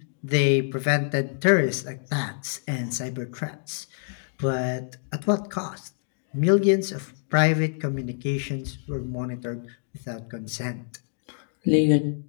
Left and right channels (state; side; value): silent; right; digital silence